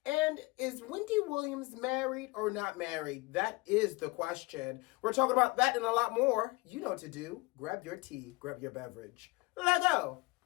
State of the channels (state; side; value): quieter; right; 23.6 dB